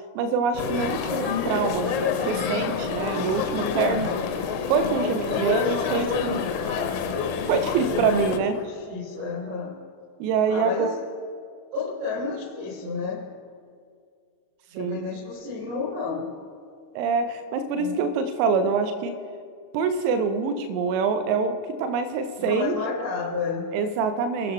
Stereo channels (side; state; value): left; late; 37 ms